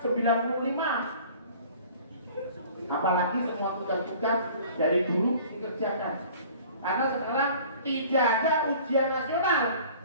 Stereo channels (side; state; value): both; inverted; correlation -0.48